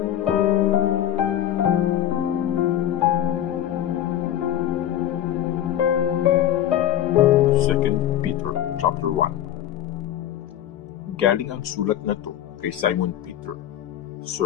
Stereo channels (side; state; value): right; quieter; 11.4 dB